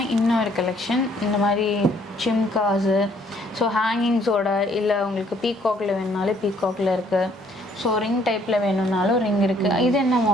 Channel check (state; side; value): normal; both; correlation 0.64